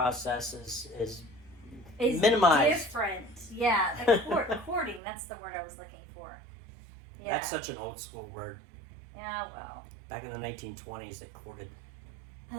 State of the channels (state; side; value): drops out; left; at 5.0 s